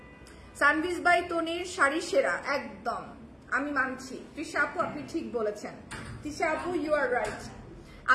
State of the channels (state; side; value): identical; both; correlation 1.00